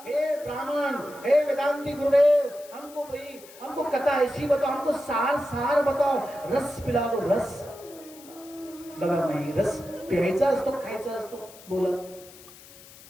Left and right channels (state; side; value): noise; left; hiss, 20 dB below the sound